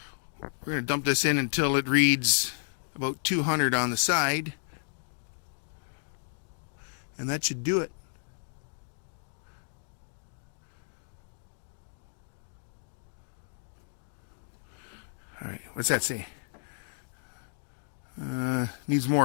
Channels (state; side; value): silent; right; digital silence